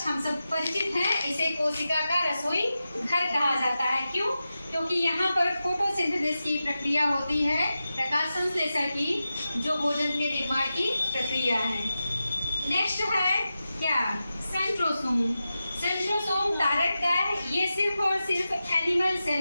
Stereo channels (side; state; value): both; inverted; correlation -0.92